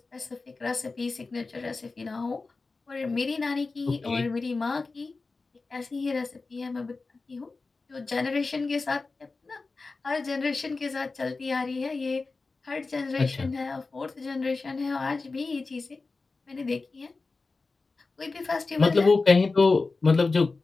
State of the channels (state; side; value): quieter; right; 3.9 dB